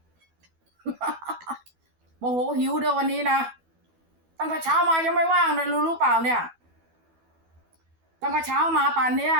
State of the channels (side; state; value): left; late; 12 ms